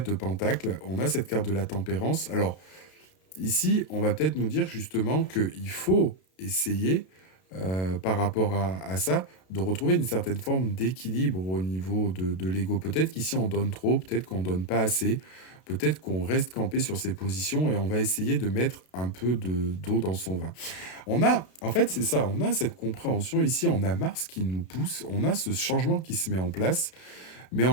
de pentacle, on a cette carte de la tempérance. Alors, ici, on va peut-être nous dire justement qu'il faut essayer, par rapport à ça, de retrouver une certaine forme d'équilibre au niveau de l'ego. Peut-être qu'ici, on donne trop, peut-être qu'on donne pas assez, peut-être qu'on reste campé sur ses positions et on va essayer de mettre un peu d'eau dans son vin. En fait, c'est ça, on a cette compréhension ici, on a Mars qui nous pousse, on a ce changement qui se met en place, mais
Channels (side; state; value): right; late; 32 ms